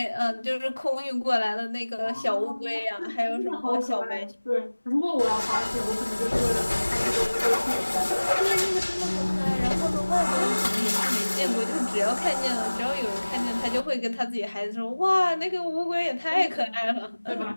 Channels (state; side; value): inverted; both; correlation -1.00